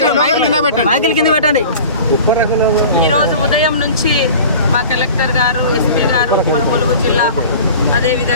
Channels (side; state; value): both; inverted; correlation -0.40